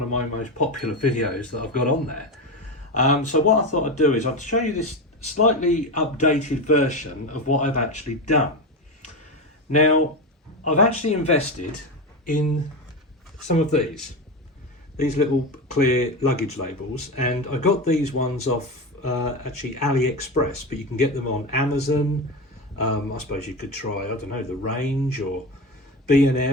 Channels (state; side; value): normal; both; correlation 0.19